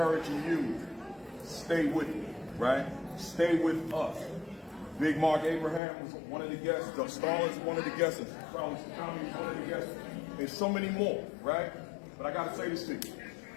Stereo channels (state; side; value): drops out; right; at 5.8 s